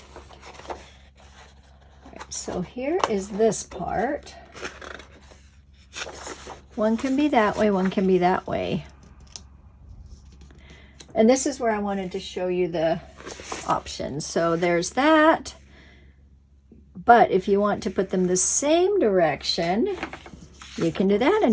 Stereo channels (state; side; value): identical; both; correlation 1.00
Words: All right, so here is this part. One can be that way, one can be that way. And this is where I wanted to show you the options. So there's that. But if you want to put them the same direction, you can do that,